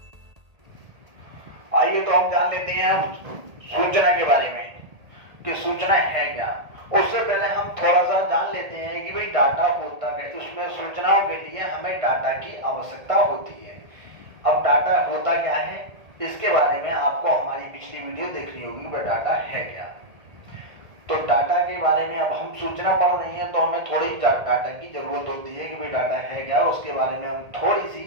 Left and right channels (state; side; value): late; left; 1.8 ms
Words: आइए तो हम जान लेते हैं सूचना के बारे में कि सूचना है क्या। उससे पहले हम थोड़ा सा जान लेते हैं कि भाई डाटा होता है। उसमें सूचनाओं के लिए हमें डाटा की आवश्यकता होती है। अब डाटा होता क्या है इसके बारे में आपको हमारी पिछली वीडियो देखनी होगी। वह डाटा है क्या। तो डाटा के बारे में अब हम सूचना पढ़ रहे हैं तो हमें थोड़ी डाटा की जरूरत होती है कि भाई डाटा है क्या। उसके बारे में हम थोड़ी सी